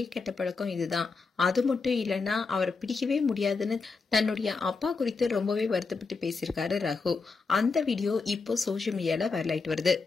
கெட்ட பழக்கம் இதுதான், அது மட்டும் இல்லைன்னா அவரை பிடிக்கவே முடியாதுன்னு தன்னுடைய அப்பா குறித்து ரொம்பவே வருத்தப்பட்டு பேசியிருக்காரு ரகு. அந்த வீடியோ இப்போ சோசியல் மீடியால வைரல் ஆயிட்டு வருது.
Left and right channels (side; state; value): right; quieter; 4.4 dB